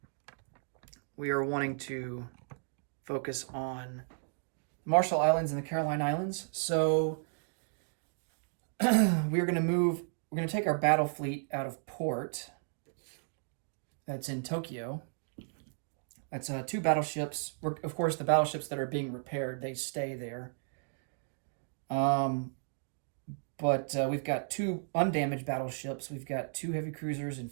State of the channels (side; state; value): left; silent; digital silence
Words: we are wanting to focus on Marshall Islands and the Caroline Islands. So we're going to take our battle fleet out of port that's in Tokyo. That's 2 battleships. Of course, the battleships that are being repaired, they stay there. But we've got 2 undamaged battleships. We've got 2 heavy cruisers and